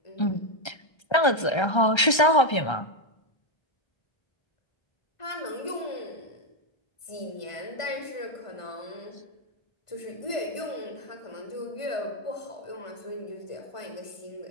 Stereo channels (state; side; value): late; right; 1.3 ms